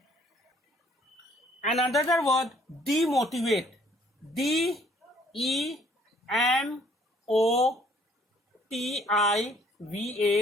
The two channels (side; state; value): both; normal; correlation 0.62